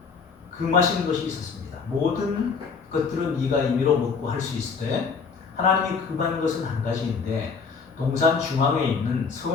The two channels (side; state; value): right; quieter; 5.4 dB